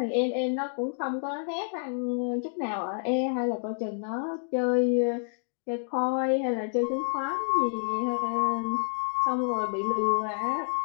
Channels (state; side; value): silent; right; digital silence